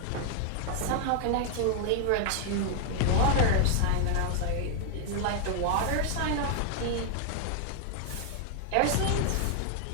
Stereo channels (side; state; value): both; different; correlation 0.00